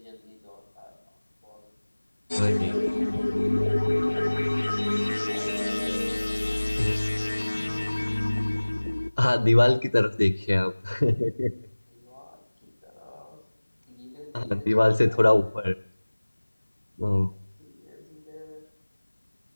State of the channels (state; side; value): inverted; both; correlation -1.00